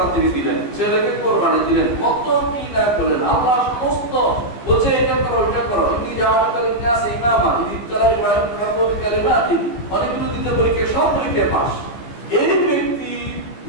তিনি দিলেন, ছেলেকে কোরবানি দিলেন, কত কি না করলেন, আল্লাহ সমস্ত বলছে এটা করো এটা করো, ইনি জাওয়াতুল নাস ইমামা ইনি তাআলা ইব্রাহিম রাব্বুল কালিমাতি, অনেকগুলো দিতে পরীক্ষা, সব পরীক্ষায় পাস। এই ব্যক্তি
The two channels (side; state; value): right; late; 15 ms